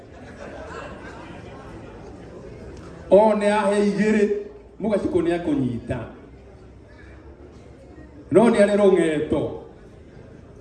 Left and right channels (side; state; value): both; identical; correlation 1.00